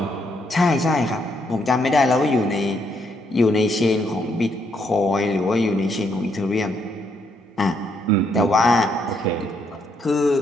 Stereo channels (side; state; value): both; normal; correlation 0.74